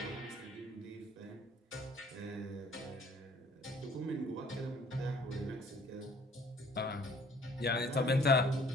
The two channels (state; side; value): normal; both; correlation 0.56